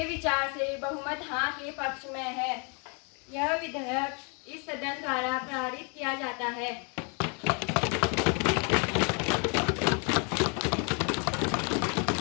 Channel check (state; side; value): quieter; right; 35.6 dB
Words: विचार से बहुमत हाँ के पक्ष में है। यह विधेयक इस सदन द्वारा पारित किया जाता है।